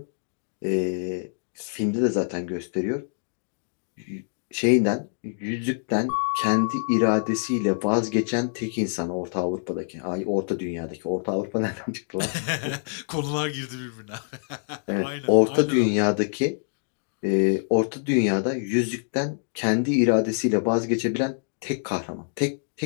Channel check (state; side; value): silent; right; digital silence